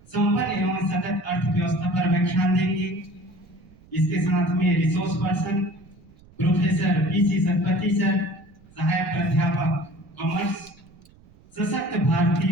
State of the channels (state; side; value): noise; right; rumble, 26 dB below the sound